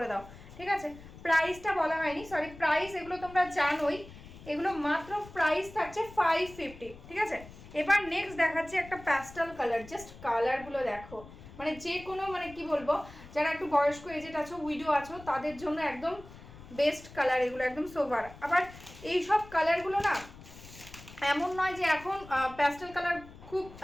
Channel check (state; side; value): noise; left; rumble, 18 dB below the sound